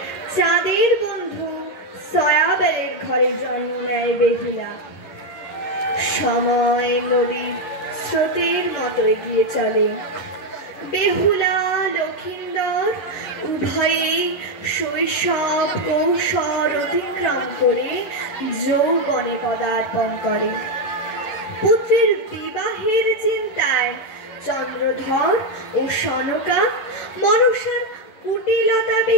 চাঁদের বন্ধু সয়াবেলের ঘরে জন্ম নেয় বেহুলা। সময় নদীর স্রোতের মতো এগিয়ে চলে। বেহুলা লক্ষিন্দর উভয়েই শৈশব কৌশল অতিক্রম করে যৌবনে পদার্পণ করে। পুত্রের বিবাহের চিন্তায় চন্দ্রধর ও সনকা মনসার কুটিলতা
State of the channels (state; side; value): late; right; 10 ms